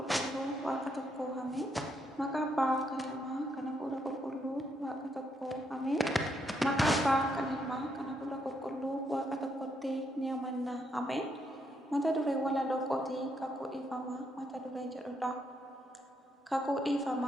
Waaqa tokkoo Ameen. Maqaa Abbaa kan Ilmaa kan Hafuura Qulqulluu Waaqa tokkoo Ameen. Maqaa Abbaa kan Ilmaa kan Hafuura Qulqulluu Waaqa tokkotti ni amanna Ameen. Mata duree walaloo kootii kakuu dhiifamaa mata duree jedhudha. Kakuu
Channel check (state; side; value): normal; both; correlation 0.76